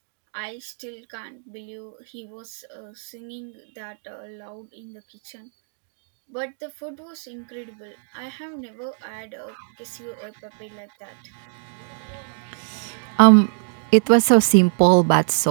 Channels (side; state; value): left; silent; digital silence